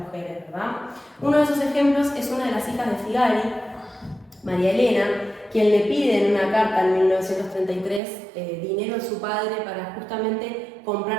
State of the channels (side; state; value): left; drops out; at 8.0 s